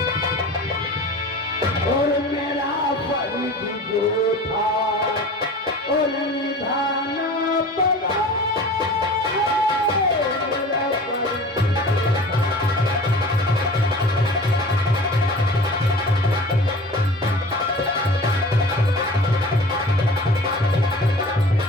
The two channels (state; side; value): normal; both; correlation 0.40